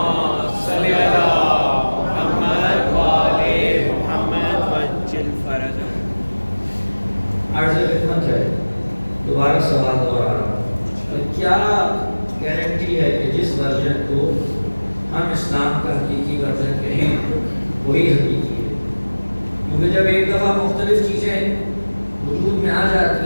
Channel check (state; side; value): inverted; both; correlation -1.00